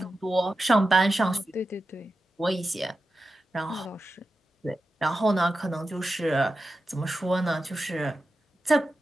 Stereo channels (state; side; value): normal; both; correlation 0.91